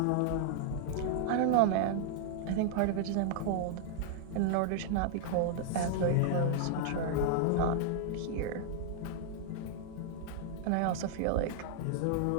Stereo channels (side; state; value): both; different; correlation -0.01